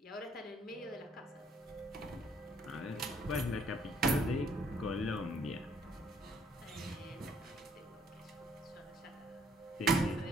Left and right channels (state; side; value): normal; both; correlation 0.65